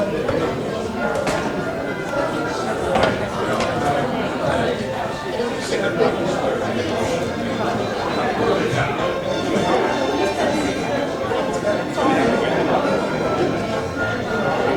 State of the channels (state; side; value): identical; both; correlation 1.00